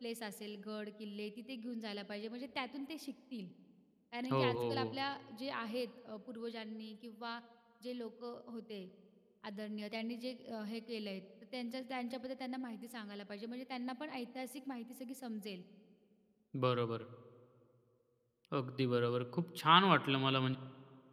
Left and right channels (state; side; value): identical; both; correlation 1.00